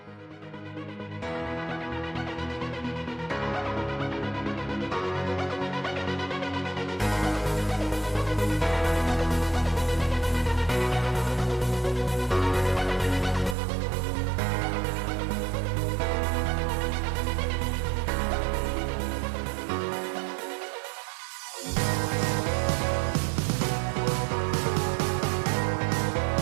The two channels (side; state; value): left; drops out; at 13.6 s